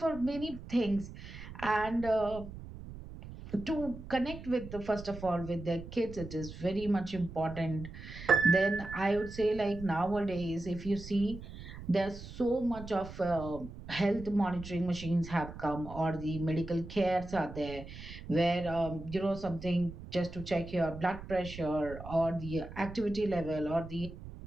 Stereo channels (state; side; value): noise; right; rumble, 13 dB below the sound